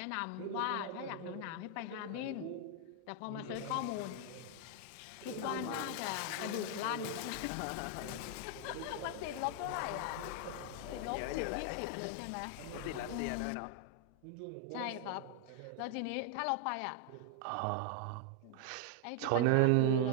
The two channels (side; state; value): both; different; correlation 0.00